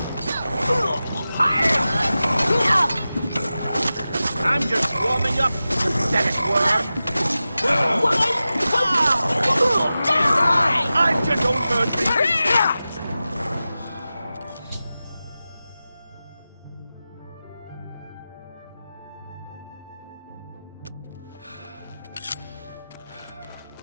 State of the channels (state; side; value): inverted; both; correlation -0.94